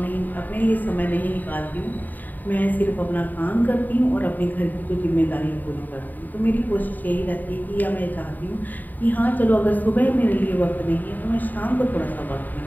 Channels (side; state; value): right; late; 0.086 ms